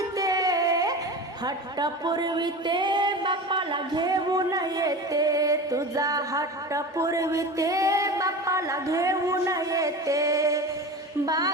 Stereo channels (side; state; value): both; normal; correlation 0.30